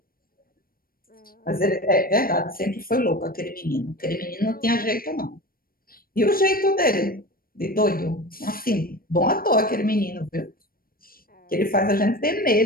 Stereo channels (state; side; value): late; right; 0.43 ms